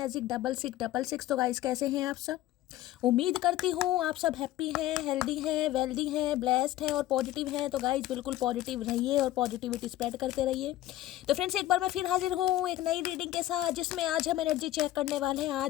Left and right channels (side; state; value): right; quieter; 14.9 dB